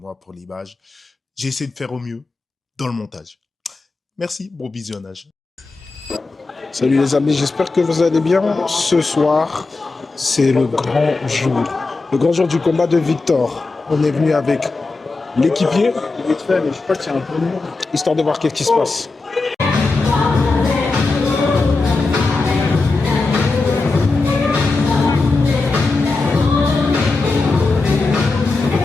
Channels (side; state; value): right; quieter; 3.7 dB